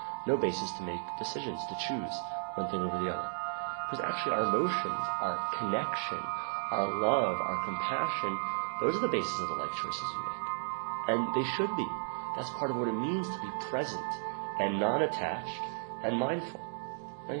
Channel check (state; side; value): silent; left; digital silence